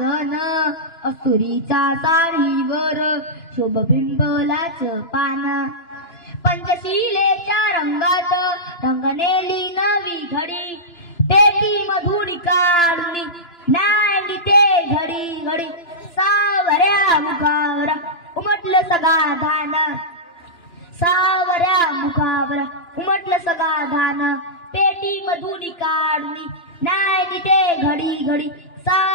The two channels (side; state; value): right; late; 2.9 ms